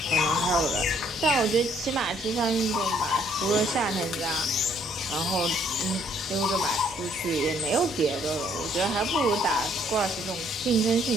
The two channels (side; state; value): both; normal; correlation 0.65